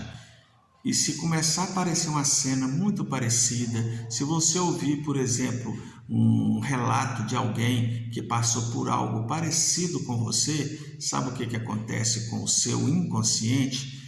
e se começar a aparecer uma cena muito parecida, se você ouvir, por exemplo, um relato de alguém que passou por algo parecido com você, sabe o que acontece com o seu inconsciente?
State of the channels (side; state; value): both; identical; correlation 1.00